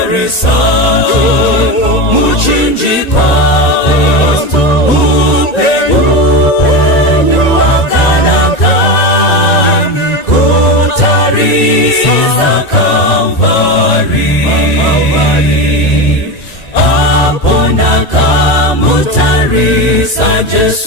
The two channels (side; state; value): right; late; 1.9 ms